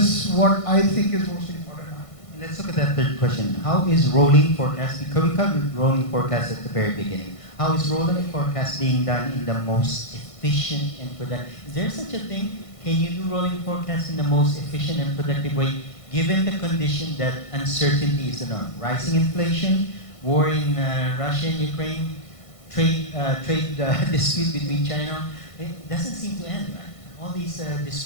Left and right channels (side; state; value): right; late; 1.5 ms